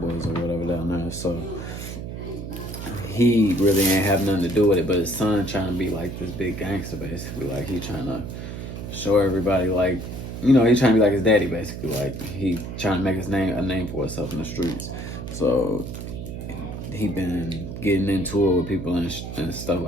or whatever down there. So he really ain't have nothing to do with it. But his son trying to be like this big gangster, basically. Like he trying to show everybody like. He trying to be like his daddy, basically. Like, he trying to make a name for himself in the streets. So, he been getting into it with people and stuff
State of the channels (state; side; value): noise; right; hum, 8 dB below the sound